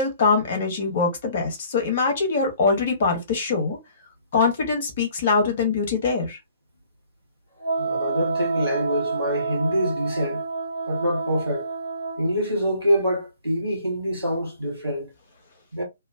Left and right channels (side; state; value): both; inverted; correlation -0.59